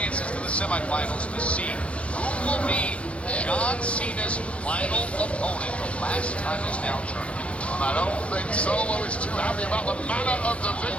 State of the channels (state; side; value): late; right; 0.062 ms